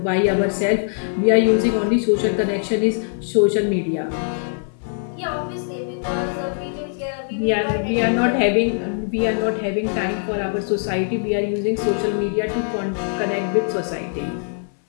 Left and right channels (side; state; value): right; silent; 64 dB below the other